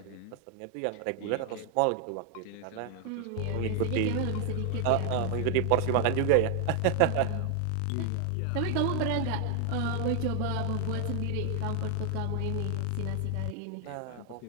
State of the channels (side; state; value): both; different; correlation 0.00